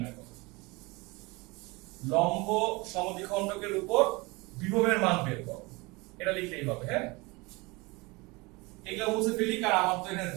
করো। লম্ব সমদ্বিখণ্ডকের উপর বিভবের মান বের করো, এটা লিখলেই হবে। হ্যাঁ, এগুলা মুছে ফেলি কারণ আমার তো এখানে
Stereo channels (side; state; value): left; quieter; 25.1 dB